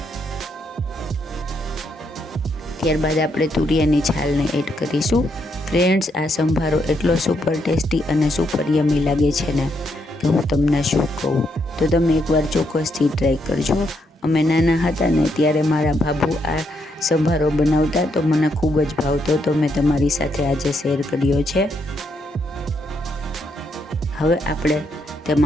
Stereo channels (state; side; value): normal; both; correlation 0.77